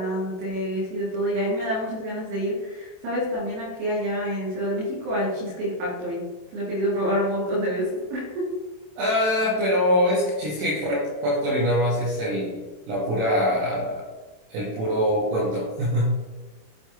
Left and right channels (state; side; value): late; left; 27 ms